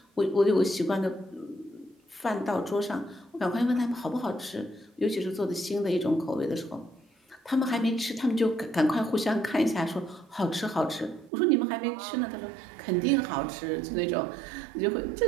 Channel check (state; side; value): drops out; left; at 11.3 s